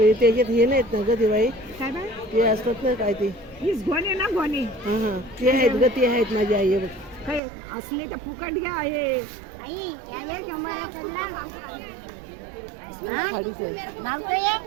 त्याच्यात हे नाहीत ना ग दिवाळी, ते असतात ना काय ते गोणे ना गोणे ते आहेत ग, ते आहेत माझी आई बघ. काय असले तर फुकट घ्या आहे.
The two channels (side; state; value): left; drops out; at 7.4 s